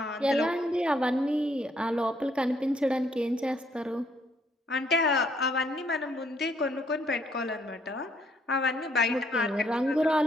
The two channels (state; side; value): normal; both; correlation 0.69